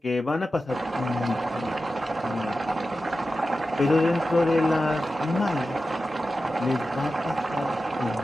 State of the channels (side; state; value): both; normal; correlation 0.93